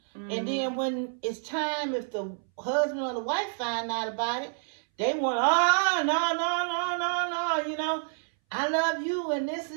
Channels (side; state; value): left; silent; 59 dB below the other